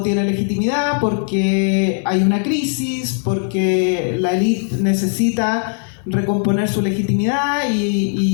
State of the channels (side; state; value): right; silent; 58 dB below the other